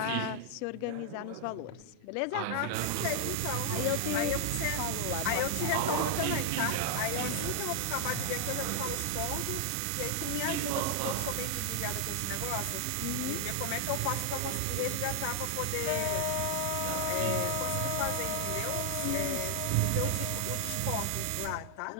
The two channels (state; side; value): different; both; correlation 0.00